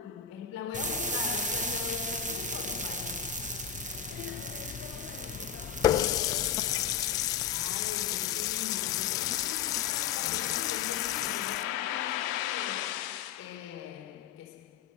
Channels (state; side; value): quieter; right; 7.9 dB